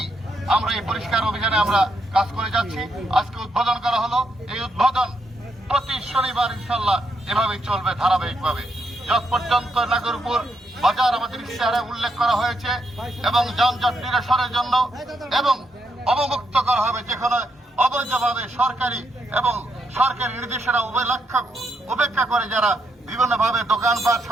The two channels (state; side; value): normal; both; correlation 0.78